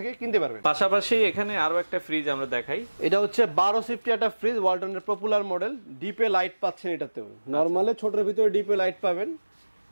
কিনতে পারবেন। পাশাপাশি এখানে আরো একটা ফ্রিজ আমরা দেখাই। এটা হচ্ছে 12 সিফটি একটা ফ্রিজ, ওয়ালটনের পপুলার মডেল। ডিপে লাইট পাচ্ছেন এটাতেও, নরমালে ছোটর ভিতরে ডিপে লাইট পাবেন।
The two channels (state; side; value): inverted; both; correlation -1.00